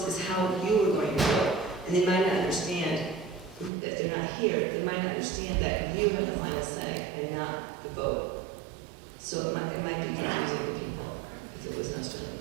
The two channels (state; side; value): drops out; left; at 3.7 s